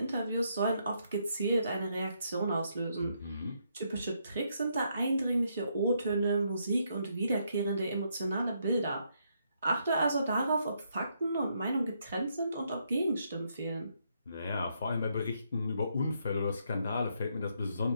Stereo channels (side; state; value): both; inverted; correlation -0.75